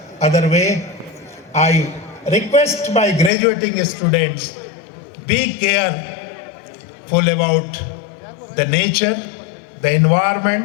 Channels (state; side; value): drops out; right; at 3.3 s